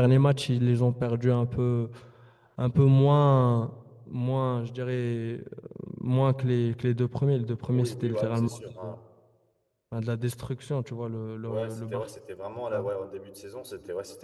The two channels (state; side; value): identical; both; correlation 1.00